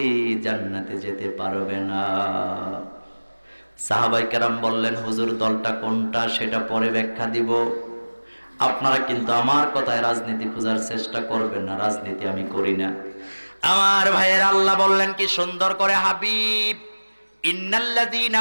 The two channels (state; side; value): inverted; both; correlation -1.00